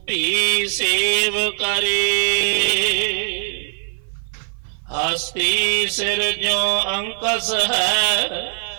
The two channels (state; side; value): silent; left; 55 dB below the other